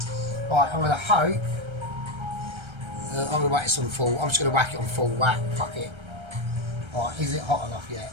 Right, I'm gonna hope. I'm going to whack this on full. I'm just going to whack it on full whack. Fuck it. Right, is it hot enough yet?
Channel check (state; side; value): late; left; 1.3 ms